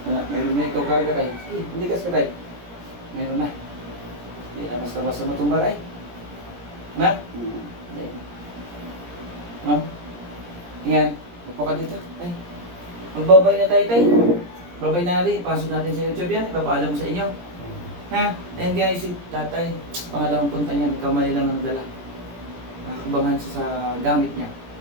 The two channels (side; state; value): left; late; 17 ms